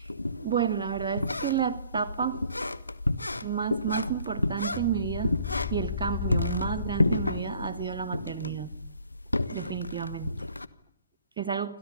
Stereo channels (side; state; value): both; inverted; correlation -0.57